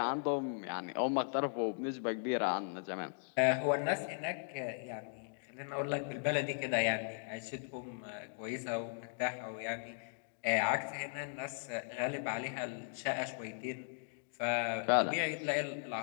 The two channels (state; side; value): silent; right; digital silence